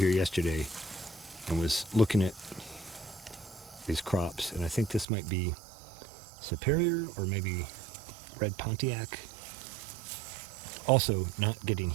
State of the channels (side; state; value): left; drops out; at 5.1 s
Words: yesterday and was looking at these crops. And I think this might be Superior or maybe Red Pontiac. Also not getting